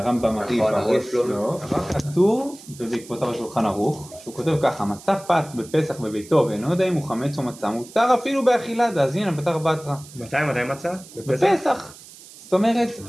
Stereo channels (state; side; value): noise; right; hiss, 19 dB below the sound